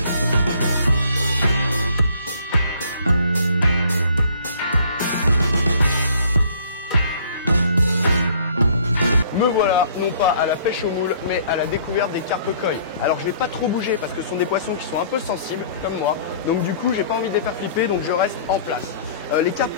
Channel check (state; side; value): inverted; both; correlation -0.56